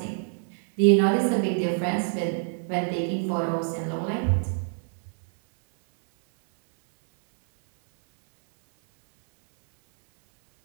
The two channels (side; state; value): left; silent; 61 dB below the other